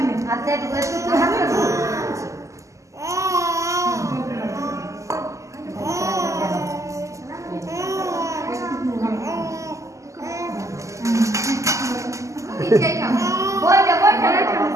নে হাতে একটু হাতে পিছাই খাও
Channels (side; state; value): left; late; 0.15 ms